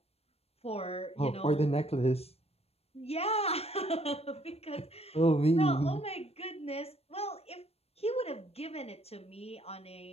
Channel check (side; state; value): right; late; 0.29 ms